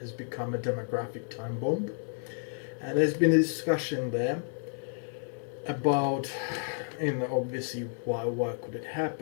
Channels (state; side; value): silent; right; 57 dB below the other